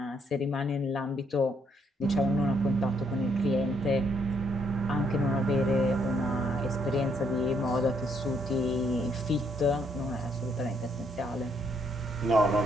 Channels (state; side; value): normal; both; correlation 0.71